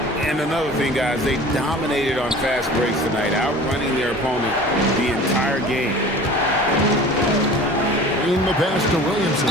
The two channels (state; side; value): normal; both; correlation 0.42